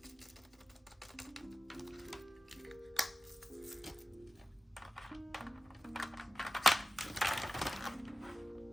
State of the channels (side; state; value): both; normal; correlation 0.94